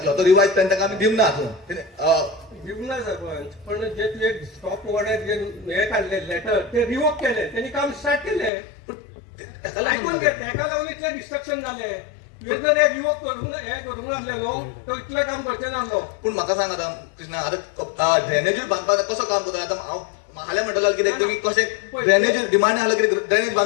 तो रिवायज प्लॅन ताका आमी दिवंक ना दिवंक ना सरपंच पण जे तुवें स्टॉप ऑर्डर जे हे काढले लेटर ते रिवोक केले त्यांनी काम स्टार्ट केले ऐकून घे ताका लागून इतले डिस्ट्रक्शन झाले जर हे रिवोक करूंक हे करूंक नासलेलो तो इतलें काम करचें नासलो पूण म्हाका सांग आतां कृष्णा आतां ड्रेनेजूय बांदपाक कसो काम करता आतां हांव हाल्या म्हणटलो कितें तुमी कशें ड्रेनेज डिमांड आसलो कितें ड्रेनेज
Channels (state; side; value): drops out; right; at 8.5 s